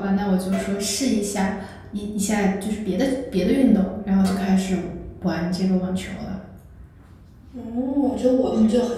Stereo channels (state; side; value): identical; both; correlation 1.00